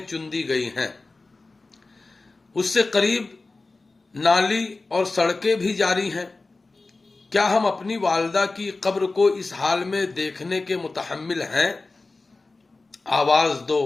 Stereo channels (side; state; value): right; quieter; 3.5 dB